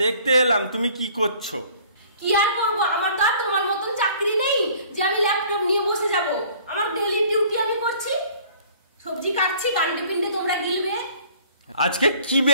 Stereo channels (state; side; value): inverted; both; correlation -0.53